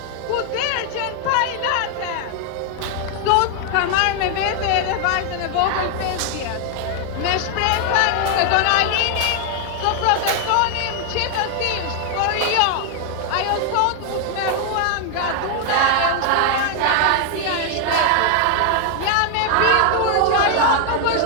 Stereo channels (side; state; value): both; different; correlation 0.00